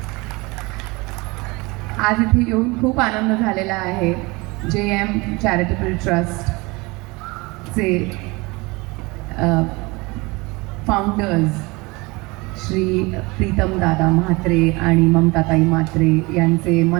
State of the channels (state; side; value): quieter; left; 24.7 dB